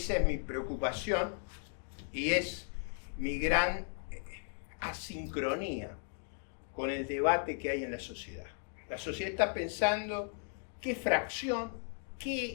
es mi preocupación y es mi gran asincronía con el debate que hay en la sociedad. La sociedad está pensando qué fracción,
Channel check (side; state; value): right; silent; 54 dB below the other